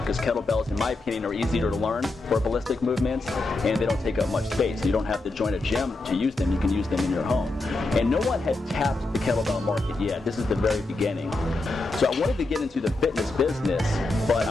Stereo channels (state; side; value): quieter; right; 3.1 dB